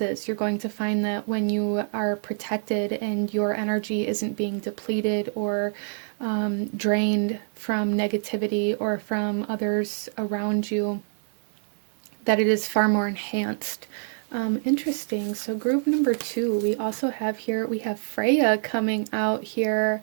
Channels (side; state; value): left; silent; digital silence